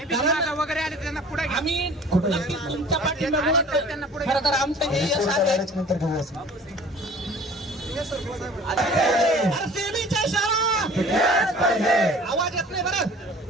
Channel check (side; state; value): both; normal; correlation 0.47